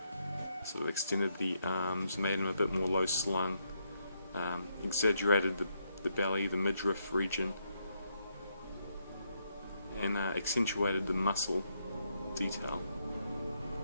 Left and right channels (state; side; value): inverted; both; correlation -0.78